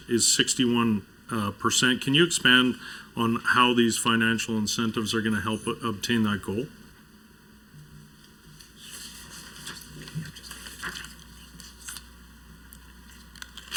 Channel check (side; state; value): both; identical; correlation 1.00